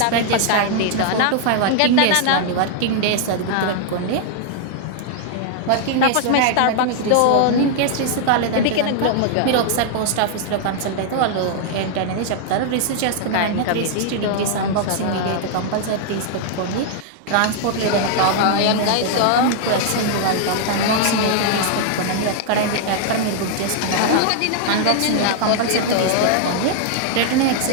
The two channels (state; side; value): different; both; correlation 0.00